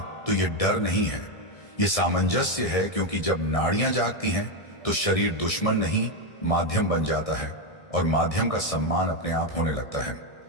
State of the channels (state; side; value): late; right; 1.6 ms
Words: तो यह डर नहीं है, यह सामंजस्य है। क्योंकि जब नाड़ियां जागती हैं तो शरीर दुश्मन नहीं माध्यम बन जाता है, और माध्यम का सम्मान अपने आप होने लगता है।